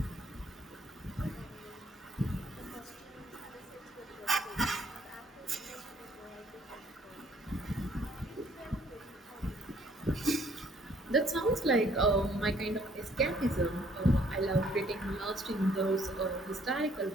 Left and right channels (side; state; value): both; normal; correlation 0.63